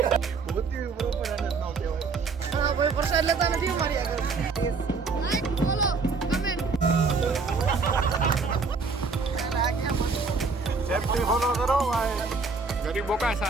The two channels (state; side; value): quieter; left; 4.5 dB